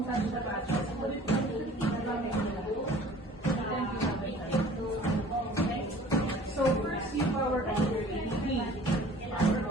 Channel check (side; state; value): both; normal; correlation 0.48